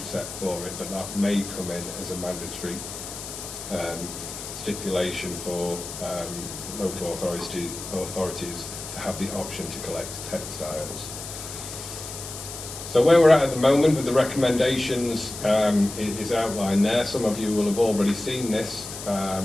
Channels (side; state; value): left; noise; hiss, 10 dB below the sound